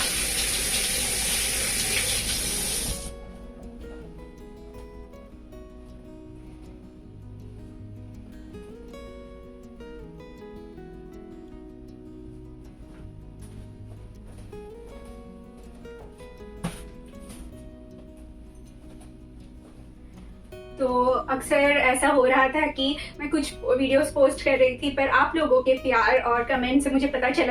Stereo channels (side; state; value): both; identical; correlation 1.00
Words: तो अक्सर ऐसा हो रहा था कि मैं कुछ वीडियोस पोस्ट कर रही थी, पर आप लोगों के प्यार और कमेंट से मुझे पता